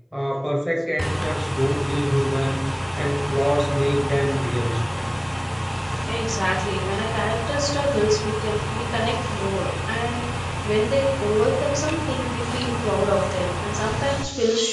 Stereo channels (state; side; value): identical; both; correlation 1.00